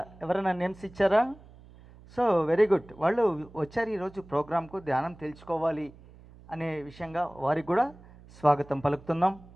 ఎవరైనా నేమ్స్ ఇచ్చారా? So very good. వాళ్ళు వచ్చారు ఈరోజు ప్రోగ్రాంకు ధ్యానం తెలుసుకోవాలి అనే విషయంగా వారికి కూడా స్వాగతం పలుకుతున్నాం.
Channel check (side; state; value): right; noise; hum, 22 dB below the sound